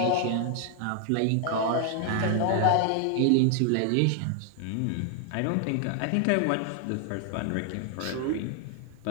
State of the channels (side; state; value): both; different; correlation 0.00